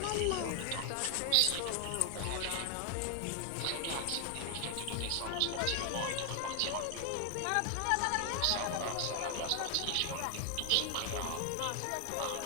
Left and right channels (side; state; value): both; different; correlation 0.00